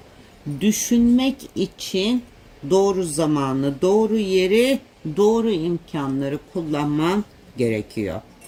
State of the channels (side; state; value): both; identical; correlation 1.00